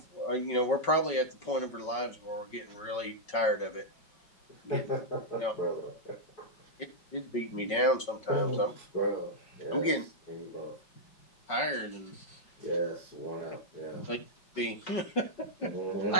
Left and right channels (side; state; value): right; late; 5.3 ms